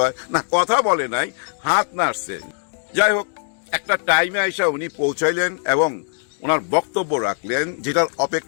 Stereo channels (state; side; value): silent; right; digital silence